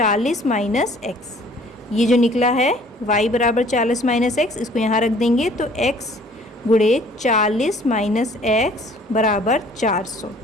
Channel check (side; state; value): both; normal; correlation 0.55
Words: माइनस एक्स। ये जो निकला है y बराबर 40 माइनस एक्स, इसको यहाँ रख देंगे तो x गुणे 40 माइनस एक्स बराबर 400।